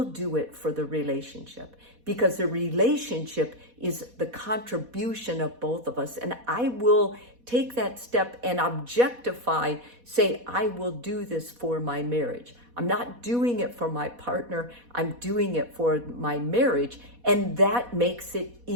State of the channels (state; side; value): late; left; 4.1 ms